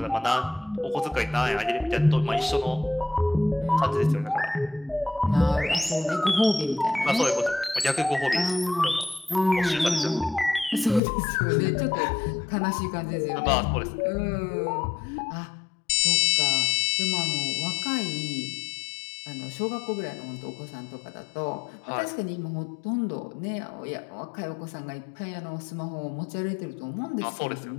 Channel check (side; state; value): right; drops out; at 11.0 s